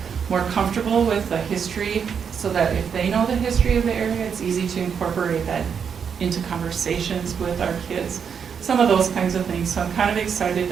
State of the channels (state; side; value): quieter; left; 7.0 dB